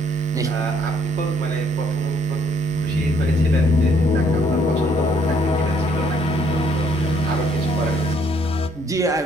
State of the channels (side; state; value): both; normal; correlation 0.66